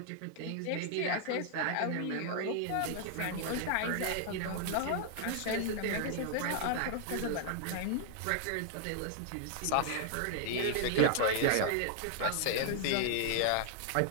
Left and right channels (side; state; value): both; different; correlation -0.01